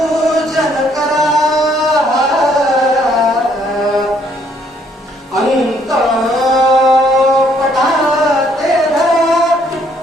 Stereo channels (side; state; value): both; normal; correlation 0.66